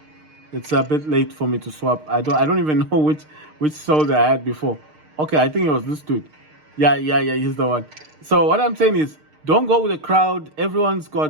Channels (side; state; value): left; late; 6.5 ms